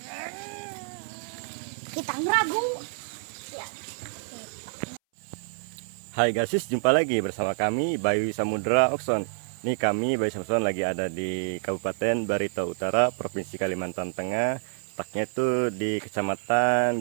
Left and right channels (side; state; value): left; silent; 60 dB below the other